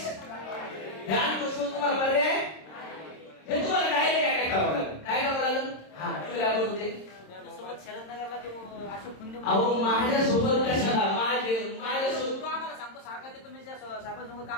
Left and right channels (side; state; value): right; late; 26 ms